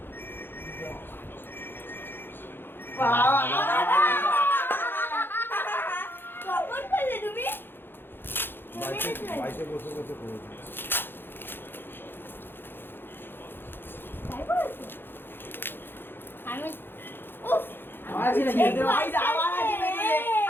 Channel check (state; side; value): late; right; 0.10 ms